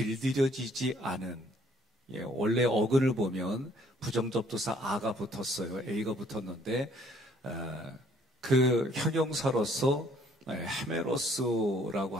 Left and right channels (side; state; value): both; normal; correlation 0.62